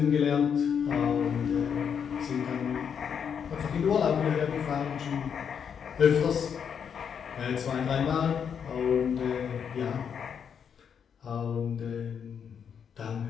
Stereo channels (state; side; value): quieter; right; 7.4 dB